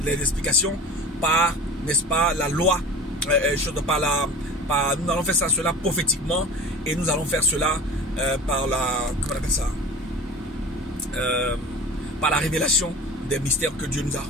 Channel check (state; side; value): normal; both; correlation 0.36